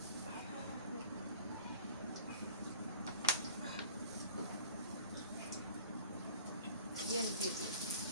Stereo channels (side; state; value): both; inverted; correlation -0.45